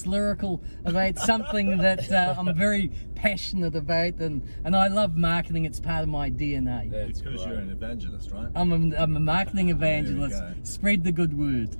lyrical about something that I'm very passionate about, and I love marketing. It's part of my DNA. That's because you're an evangelist, right? I'm a marketing evangelist. Spread the good word.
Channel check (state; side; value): inverted; both; correlation -1.00